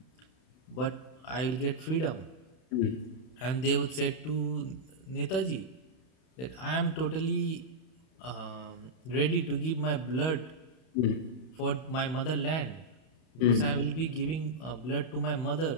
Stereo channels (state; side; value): late; right; 31 ms